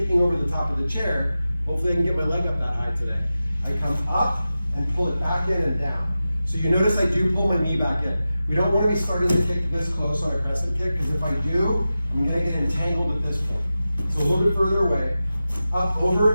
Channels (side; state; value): both; inverted; correlation -0.94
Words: over the top of the chair, hopefully I can get my leg up that high today. I come up and pull it back in and down. So you notice I do pull my knee back in. We don't want to be starting to kick this close on a crescent kick because if I do, I'm going to get entangled at this point. So a little bit further away, up,